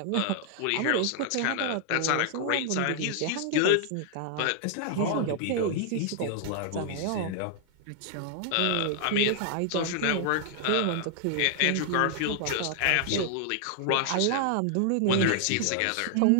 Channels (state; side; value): different; both; correlation 0.00